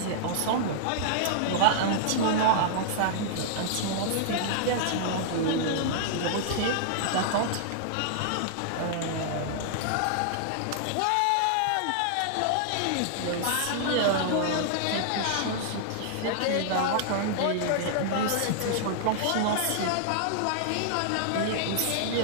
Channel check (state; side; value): different; both; correlation -0.01